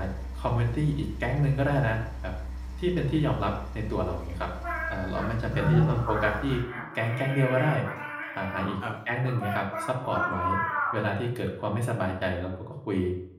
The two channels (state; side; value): identical; both; correlation 1.00